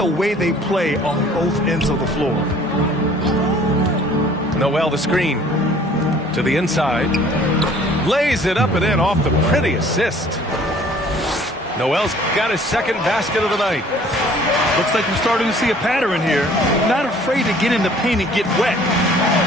way they play on both ends of the floor? Noel the screen to the inside, lays it up and in off the pretty assist. Noel's got his second basket of the night. Looks like we're starting to see a pattern here. Not afraid to get in the paint and get wet.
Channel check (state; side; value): normal; both; correlation 0.54